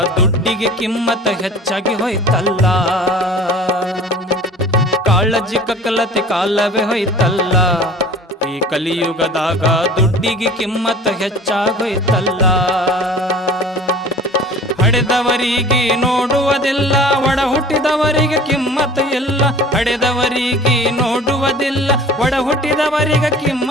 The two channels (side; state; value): both; normal; correlation 0.44